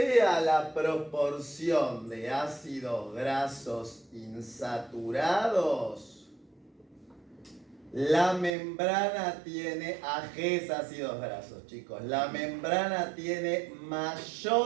la proporción de ácidos grasos insaturados, la membrana tiene, AGs ácidos grasos, chicos, la membrana tiene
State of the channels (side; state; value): left; drops out; at 8.5 s